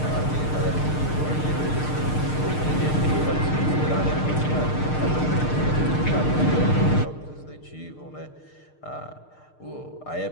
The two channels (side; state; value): right; late; 6.6 ms